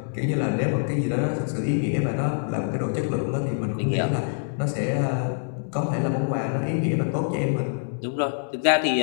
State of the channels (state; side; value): silent; right; digital silence